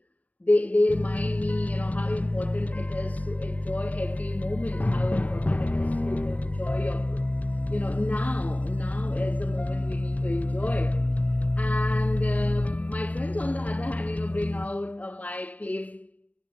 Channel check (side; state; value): right; late; 0.072 ms